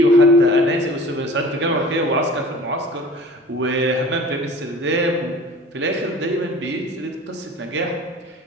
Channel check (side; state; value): both; normal; correlation 0.43